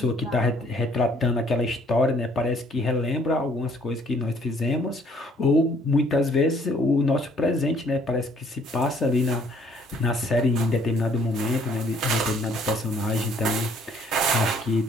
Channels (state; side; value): normal; both; correlation 0.61